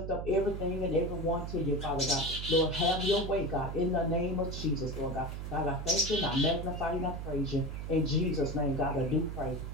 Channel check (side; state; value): right; noise; hum, 6 dB below the sound